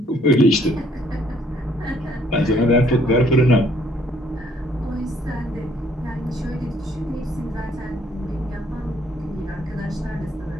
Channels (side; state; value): both; normal; correlation 0.64